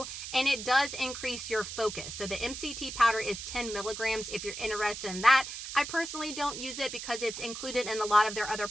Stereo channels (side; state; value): right; noise; hiss, 8 dB below the sound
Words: and it does increase your focus. So the MCT powder is 10 milligrams if you're interested in that. I personally don't use it because it's included in a lot of their other